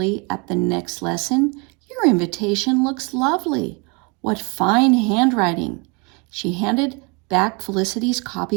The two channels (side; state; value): left; quieter; 31.0 dB